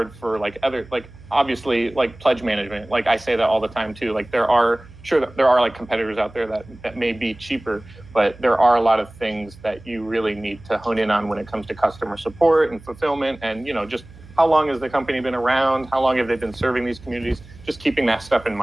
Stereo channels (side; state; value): right; noise; hum, 21 dB below the sound